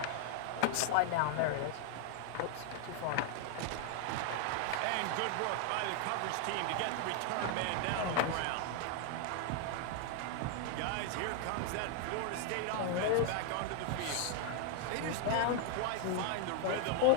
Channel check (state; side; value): different; both; correlation 0.00